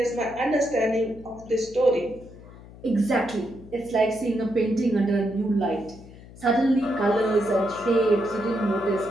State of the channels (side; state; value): left; noise; hum, 19 dB below the sound